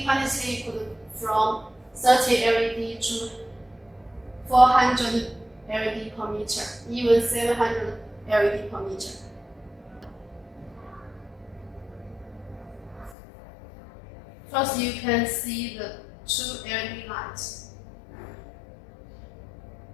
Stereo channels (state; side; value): drops out; right; at 13.2 s